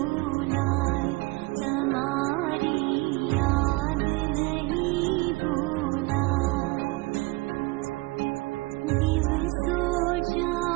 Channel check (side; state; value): left; quieter; 23.3 dB